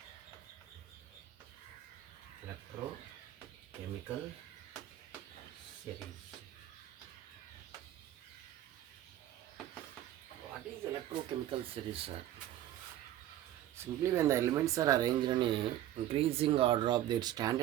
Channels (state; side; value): quieter; left; 12.9 dB